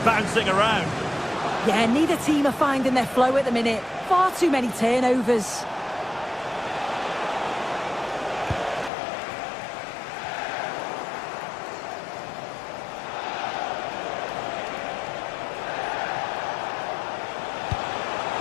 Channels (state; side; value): drops out; right; at 8.9 s